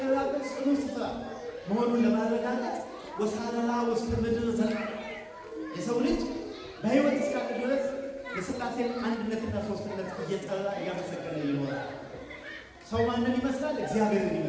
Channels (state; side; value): identical; both; correlation 1.00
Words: ጽኑ ስፍራ መሆኑን ለማረጋገጥ ወሳረራ ውስተ ምድር ዘለዓለም የሰው ልጅ በሕይወት እስካለ ድረስ የሥላሴን አንድነትና ሦስትነት እየጠራ እያመሰገነ ይኖራል። ሰው ማንን ይመስላል? እግዚአብሔርን